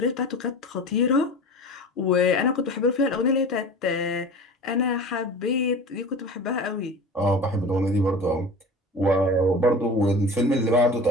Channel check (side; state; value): both; normal; correlation 0.35